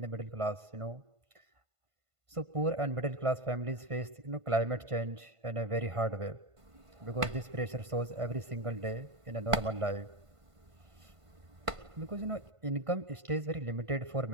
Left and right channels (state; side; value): late; left; 1.5 ms